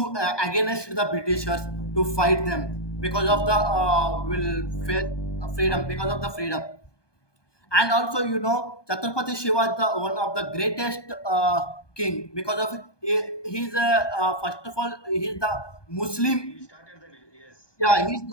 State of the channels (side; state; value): right; late; 1.2 ms